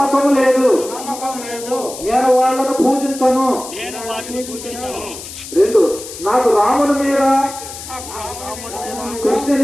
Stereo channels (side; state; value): left; noise; hiss, 12 dB below the sound